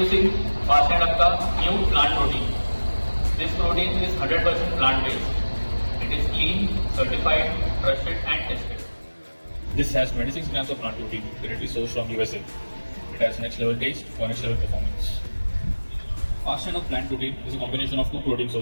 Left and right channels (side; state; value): both; inverted; correlation -1.00